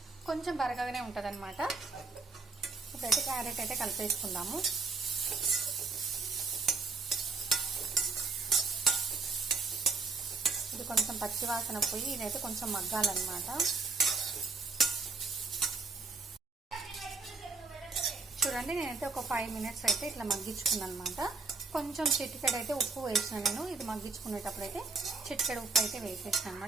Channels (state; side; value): quieter; left; 4.2 dB